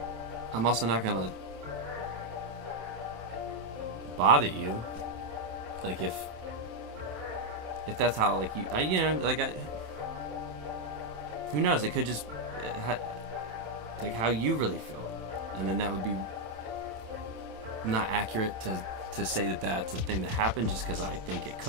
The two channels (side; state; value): left; late; 27 ms